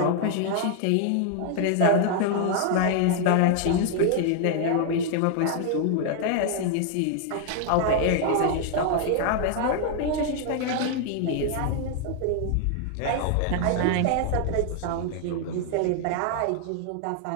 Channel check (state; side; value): different; both; correlation 0.00